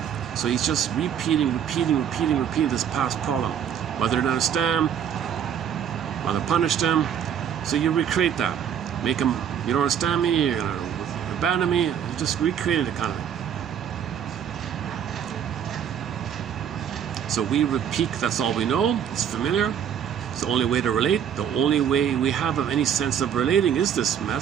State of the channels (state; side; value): quieter; left; 8.7 dB